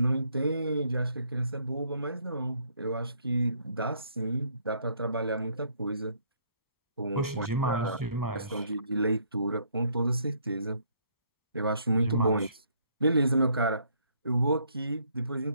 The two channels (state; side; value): inverted; both; correlation -0.67